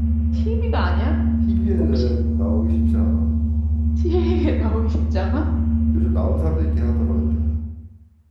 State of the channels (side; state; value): both; identical; correlation 1.00